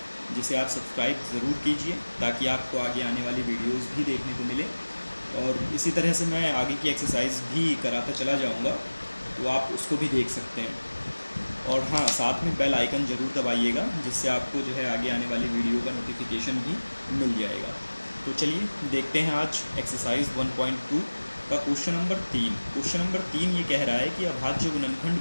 जिसे आप सब्सक्राइब ज़रूर कीजिए ताकि आपको आगे आने वाली वीडियोस भी देखने को मिले। और इसी तरह से मैं आगे की एक्सरसाइज भी कराता चला जाऊँगा, तो आप उसको भी देख सकते हैं। और हाँ, साथ में बेल आइकन ज़रूर दबाइएगा, जिससे आपको जो है आगे आने वाली वीडियो का नोटिफिकेशन भी मिल जाएगा। तो चलिए देखते हैं आज एक्सरसाइज 1.2 का क्वेश्चन नंबर 3। क्वेश्चन नंबर 3 ये कह रहा है कि अभाज्य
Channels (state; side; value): inverted; both; correlation -1.00